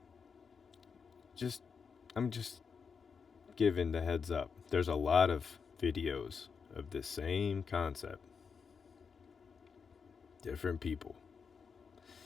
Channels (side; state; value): right; quieter; 5.8 dB